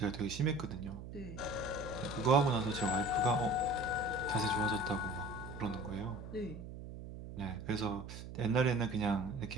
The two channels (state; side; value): noise; right; hum, 11 dB below the sound